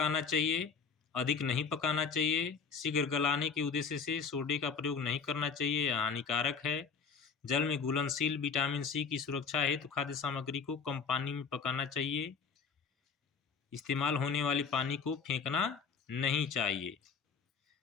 चाहिए, अधिक नहीं पकाना चाहिए, शीघ्र गलाने के उद्देश्य से सोडे का प्रयोग नहीं करना चाहिए, यह हानिकारक है। जल में घुलनशील विटामिन सी की सुरक्षा हेतु खाद्य सामग्री को कम पानी में पकाना चाहिए। इस्तेमाल होने वाले पानी को फेंकना नहीं चाहिए।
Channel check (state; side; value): quieter; right; 5.8 dB